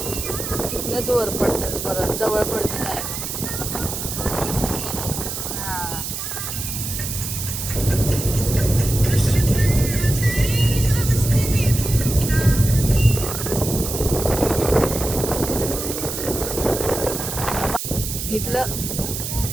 तिथनंच वर पडतं, परत जवळ पडतं जायला. हा,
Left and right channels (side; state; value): right; noise; hiss, 5 dB below the sound